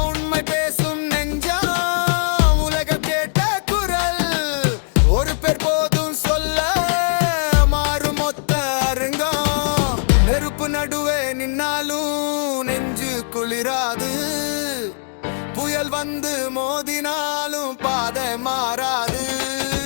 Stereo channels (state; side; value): silent; right; digital silence